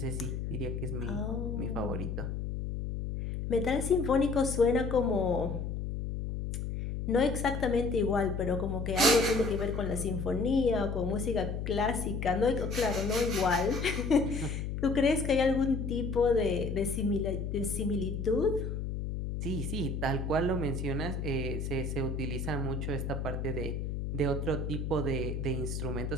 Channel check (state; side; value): noise; left; hum, 4 dB below the sound